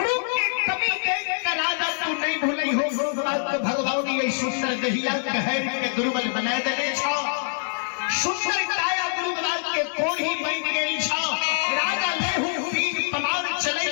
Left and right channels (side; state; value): right; silent; 62 dB below the other